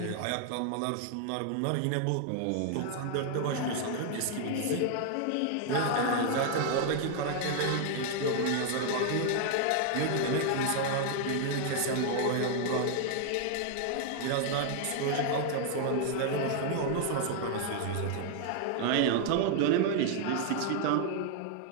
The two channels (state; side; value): different; both; correlation 0.00